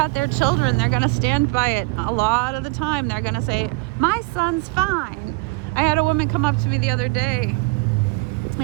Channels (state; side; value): quieter; left; 25.8 dB